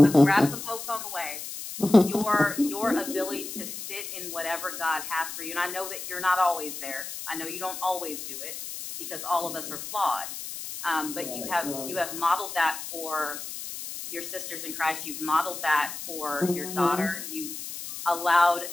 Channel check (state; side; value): noise; left; hiss, 8 dB below the sound